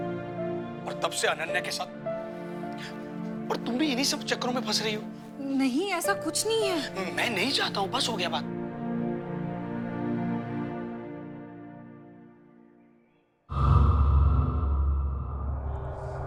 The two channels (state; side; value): identical; both; correlation 1.00